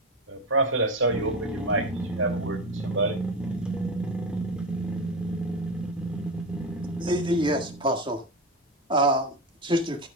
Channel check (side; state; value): both; normal; correlation 0.18